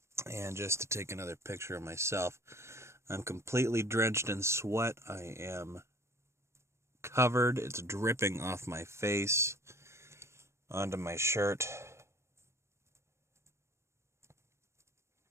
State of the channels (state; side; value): late; left; 0.13 ms